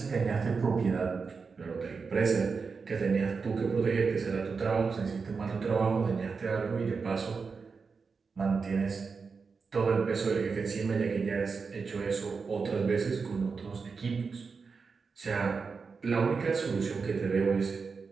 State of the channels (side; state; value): left; quieter; 5.0 dB